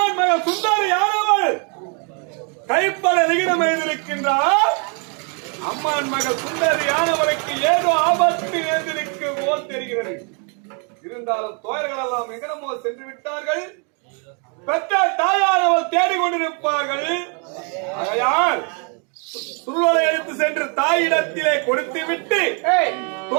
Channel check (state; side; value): quieter; left; 38.1 dB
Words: மகள் சுந்தரியானவள் கைப்பட விகிதம் எழுந்திருக்கின்றார். அம்மான் மகள் சுந்தரியானவளுக்கு ஏதோ ஆபத்து எழுந்திருக்கு போல் தெரிகிறது. இருந்தாலும் தோயர்கள் எல்லாம் எங்கனமோ சென்று விட்டார்கள். பெற்ற தேடிக்கொண்டிருப்பார்கள். ஆகையால் சுருளை எடுத்து சென்று தாயிடத்திலே கொடுத்து விட்டு